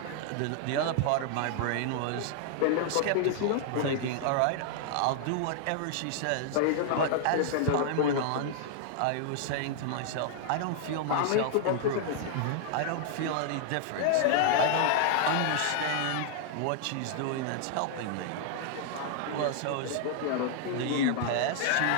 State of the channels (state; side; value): different; both; correlation 0.00